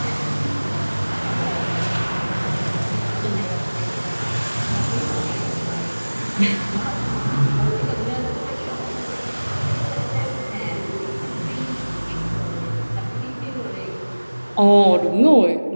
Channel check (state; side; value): inverted; both; correlation -1.00